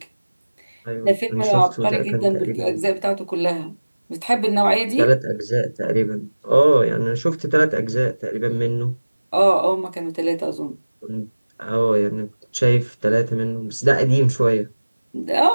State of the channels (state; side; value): inverted; both; correlation -1.00